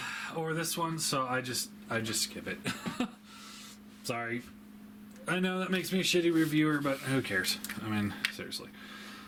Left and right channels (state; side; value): identical; both; correlation 1.00